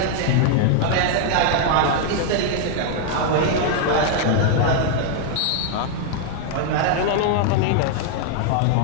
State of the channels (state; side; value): different; both; correlation 0.00